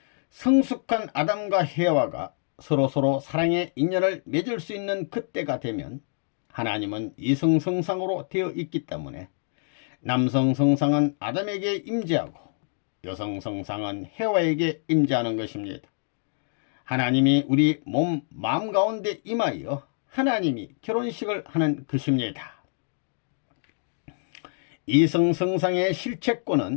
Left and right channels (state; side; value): silent; right; digital silence